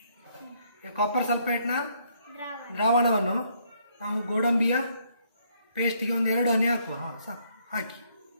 ಕಾಪರ್ ಸಲ್ಫೇಟ್ನ ದ್ರಾವಣವನ್ನು ನಾವು ಗೋಡಂಬಿಯ ಪೇಸ್ಟ್ಗೆ ಒಂದು 2 ಹನಿ ಹಾಕುವ. ಸಾಕು. ಹಾಕಿ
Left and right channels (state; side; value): inverted; both; correlation -0.69